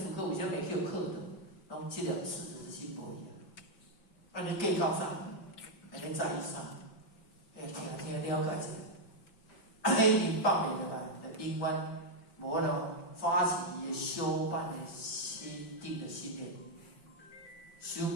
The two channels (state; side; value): late; right; 5.0 ms